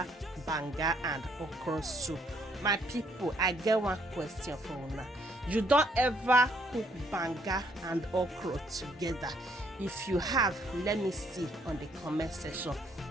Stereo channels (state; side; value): normal; both; correlation 0.68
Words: banga and okra soup. My people, I get one question for you now. You don't ever cook banga and okra together? If you have, let me see on the comment section.